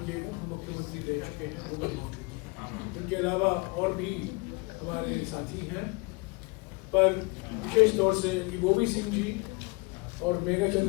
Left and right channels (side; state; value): right; quieter; 27.9 dB